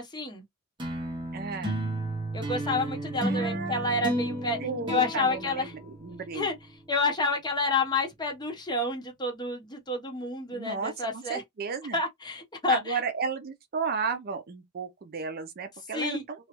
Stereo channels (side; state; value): both; normal; correlation 0.03